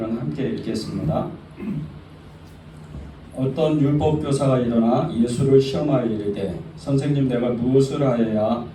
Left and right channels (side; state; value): both; identical; correlation 1.00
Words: 함께 읽겠습니다. 어떤 율법교사가 일어나 예수를 시험하여 이르되 선생님, 내가 무엇을 하여야